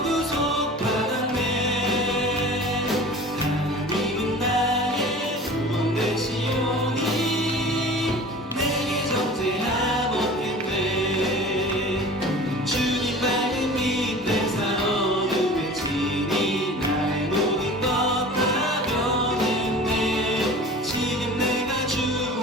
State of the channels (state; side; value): normal; both; correlation 0.41